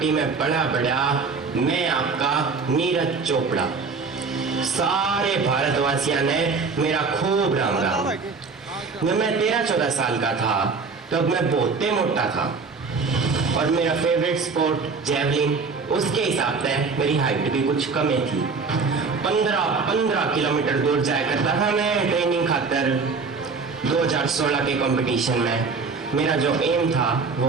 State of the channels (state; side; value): quieter; left; 4.7 dB